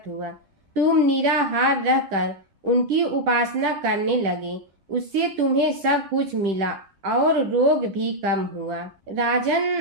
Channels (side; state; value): left; late; 10 ms